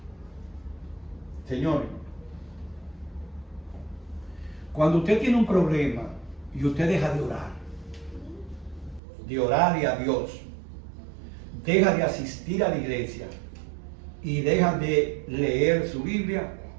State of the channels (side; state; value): left; drops out; at 9.0 s